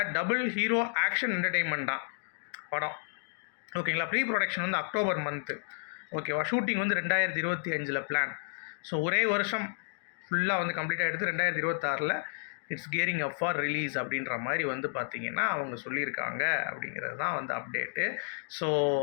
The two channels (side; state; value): right; silent; digital silence